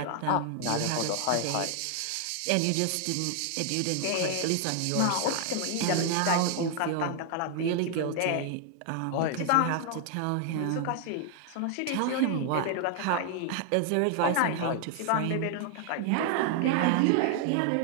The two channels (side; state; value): both; different; correlation 0.00